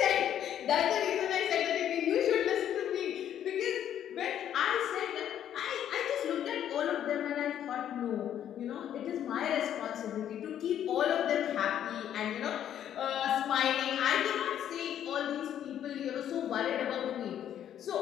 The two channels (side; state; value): right; quieter; 10.3 dB